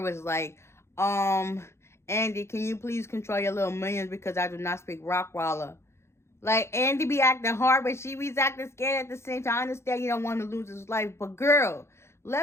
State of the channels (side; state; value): right; late; 0.13 ms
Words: was like, Andy, can you please control your little minions because I do not speak Rockwaller. Like, Andy be acting hard, but she be acting scared at the same time. I understand you don't want to lose his life, but girl,